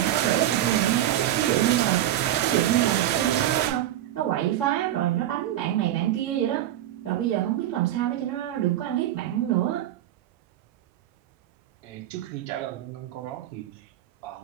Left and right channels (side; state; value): left; quieter; 12.7 dB